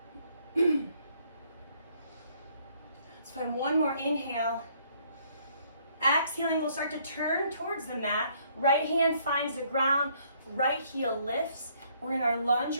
find one more inhale. Exhaling, we'll start to turn towards the mat. Right hand finds the ground, right heel lifts. We're in our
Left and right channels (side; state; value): both; inverted; correlation -0.66